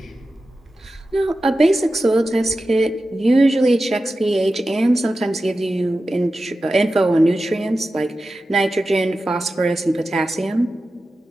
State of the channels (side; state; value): both; normal; correlation 0.93